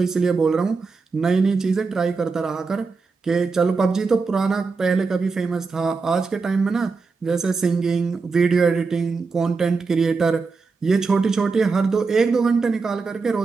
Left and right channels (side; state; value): left; quieter; 4.5 dB